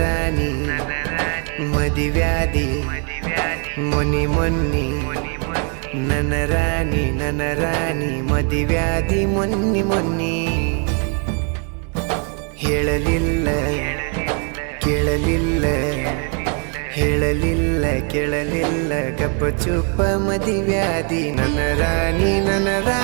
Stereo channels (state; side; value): quieter; left; 39.3 dB